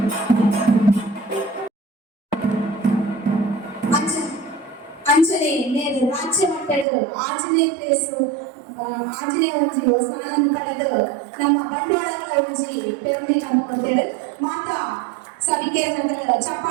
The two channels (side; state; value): left; drops out; at 6.9 s